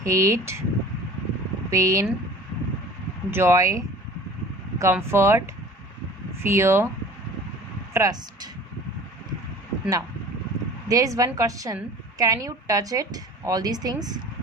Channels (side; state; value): both; normal; correlation 0.45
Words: hate, pain, joy, comfort, fear, trust. Now, there is one question. Can you touch it? All these things.